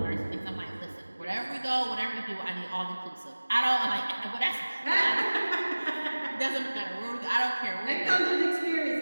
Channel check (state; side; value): inverted; both; correlation -1.00